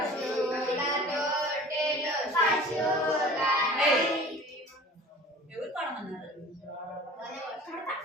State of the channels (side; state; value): both; normal; correlation 0.43